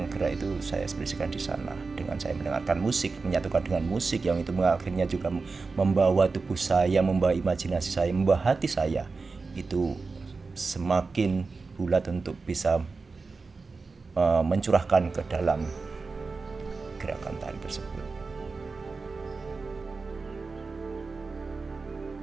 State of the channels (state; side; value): quieter; left; 4.2 dB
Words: gerak itu saya ekspresikan di sana. Dengan saya mendengarkan musik, menyatukan dengan musik yang itu akhirnya juga membawa tubuh saya, membawa imajinasi saya, membawa hati saya itu semakin bulat untuk bisa mencurahkan ke dalam gerakan tari tersebut.